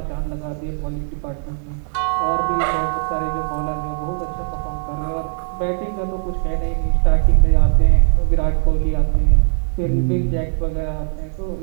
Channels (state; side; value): silent; left; digital silence